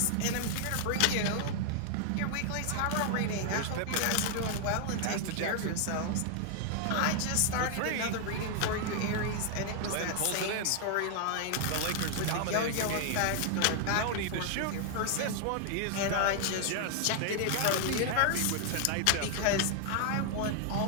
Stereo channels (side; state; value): both; different; correlation 0.00